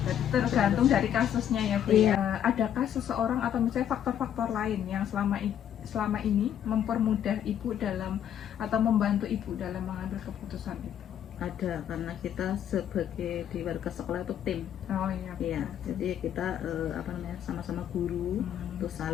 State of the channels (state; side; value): quieter; right; 9.9 dB